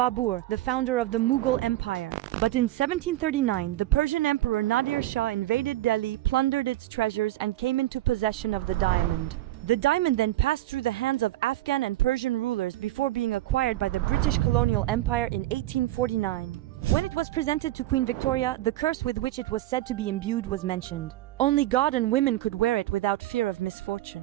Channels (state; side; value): quieter; left; 15.7 dB